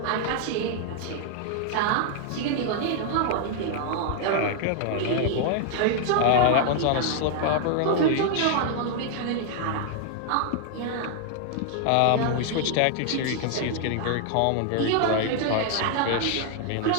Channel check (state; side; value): different; both; correlation 0.00